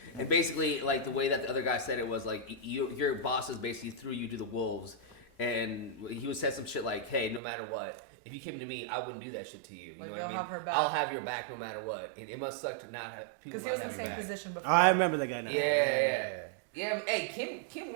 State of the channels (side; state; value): left; drops out; at 7.4 s